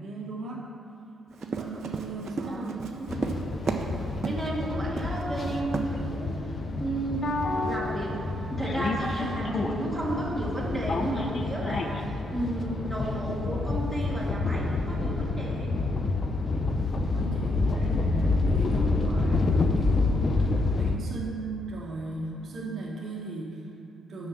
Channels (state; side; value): normal; both; correlation 0.77